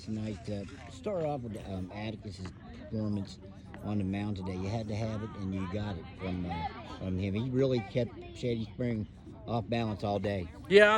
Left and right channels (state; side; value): identical; both; correlation 1.00